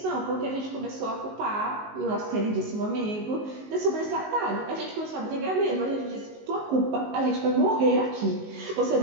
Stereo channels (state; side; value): late; left; 19 ms